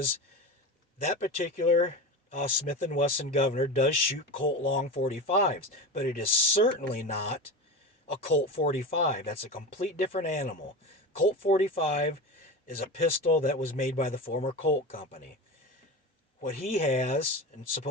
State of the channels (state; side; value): normal; both; correlation 0.27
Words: that particular Smith & Wesson Governor does shoot Colt long 45s, but it is certainly not a Colt 45. That's a complete different animal. Colt 45 is a pistol that was made by the former Colt company. What he has and